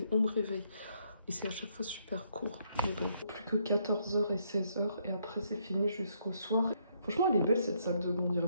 on me réveille. Et c'est à chaque fois super court. Mais bon, plus que 14 h et 16 h. Et après, c'est fini jusqu'au soir. Franchement, elle est belle cette salle de bain. On dirait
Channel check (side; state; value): both; inverted; correlation -0.72